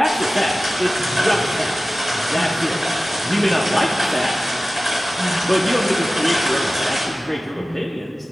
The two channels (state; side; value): normal; both; correlation 0.96